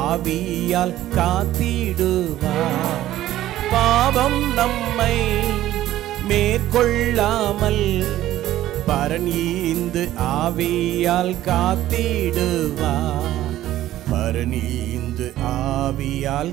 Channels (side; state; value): left; quieter; 13.9 dB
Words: ஆவியால் காத்திடுவார். பாவம் நம்மை மேற்கொள்ளாமல் பரன் ஈந்து ஆவியால் காத்திடுவார். பரன் ஈந்து